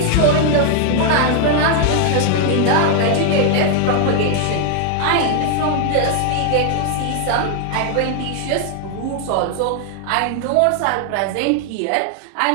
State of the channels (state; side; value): different; both; correlation 0.00